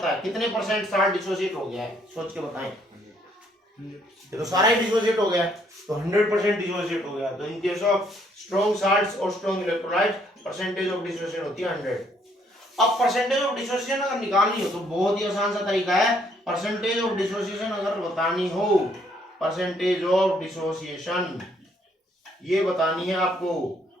है कितने परसेंट साल्ट डिसोसिएट हो गया है? सोच के बताएं। ये तो सारा ही डिसोसिएट हो गया है, तो 100% डिसोसिएट हो गया। तो in case of strong salts और strong electrolytes percentage of dissociation होती है 100। अब परसेंटेज ऑफ डिसोसिएशन अगर निकालनी हो तो बहुत ही आसान सा तरीका है, परसेंटेज ऑफ डिसोसिएशन अगर बतानी हो, परसेंटेज ऑफ डिसोसिएशन ये बतानी है आपको,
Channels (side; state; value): both; normal; correlation 0.68